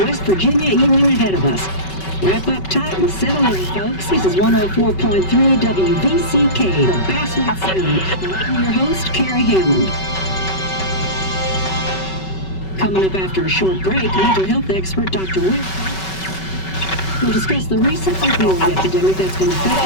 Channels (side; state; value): right; late; 5.3 ms